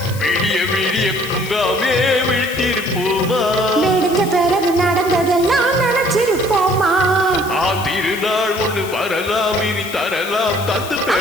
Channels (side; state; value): left; noise; hiss, 14 dB below the sound